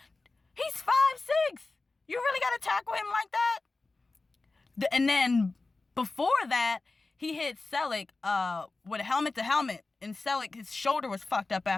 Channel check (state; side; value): quieter; right; 3.5 dB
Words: He's 5'6". You really got to tackle him like that? And then before that, he hit Selleck with a helmet to helmet. And Selleck, his shoulder was fucked up